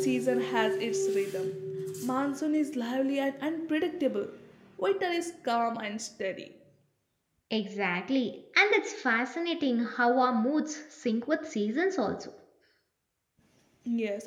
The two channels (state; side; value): identical; both; correlation 1.00